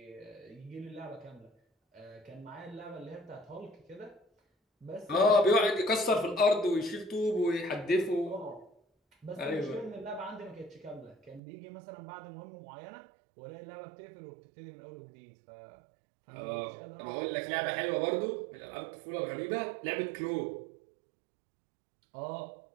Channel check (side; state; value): left; drops out; at 11.4 s